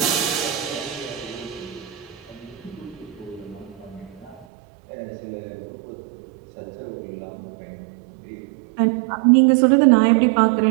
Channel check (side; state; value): left; drops out; at 4.5 s